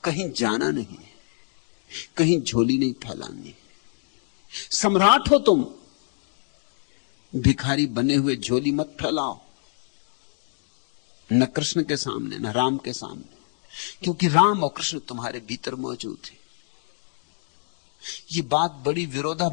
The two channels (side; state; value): right; silent; digital silence